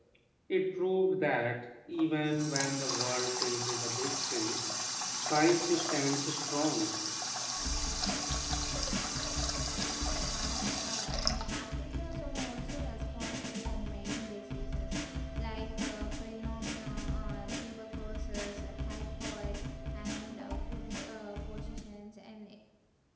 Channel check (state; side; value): identical; both; correlation 1.00